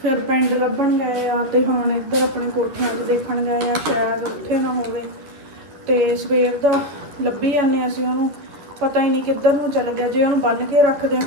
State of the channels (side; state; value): left; late; 10 ms